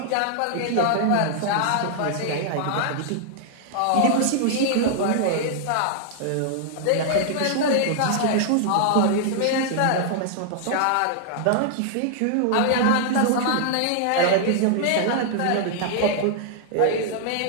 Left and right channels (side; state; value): both; different; correlation -0.01